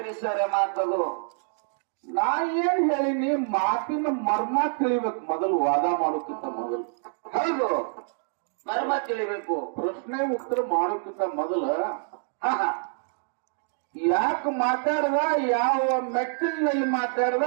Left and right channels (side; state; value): left; silent; digital silence